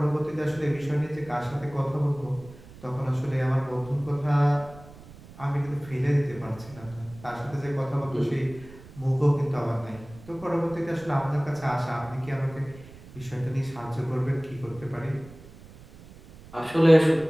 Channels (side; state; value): right; noise; rumble, 20 dB below the sound